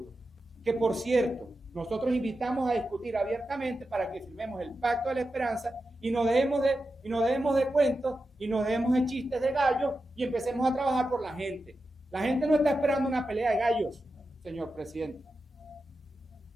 Que por cierto, nosotros invitamos a discutir abiertamente para que firmemos el Pacto de la Esperanza y nos dejemos de cuentos y nos dejemos de chistes de gallos y empecemos a trabajar por la gente. La gente no está esperando una pelea de gallos, señor presidente.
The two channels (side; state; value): both; normal; correlation 0.90